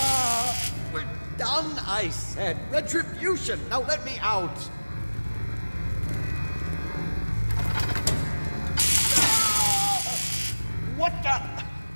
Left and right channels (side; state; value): both; inverted; correlation -1.00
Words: We're done, I said! Retribution! Now let me out! What the?